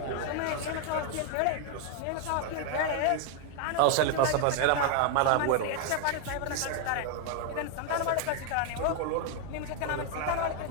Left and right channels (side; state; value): both; different; correlation 0.00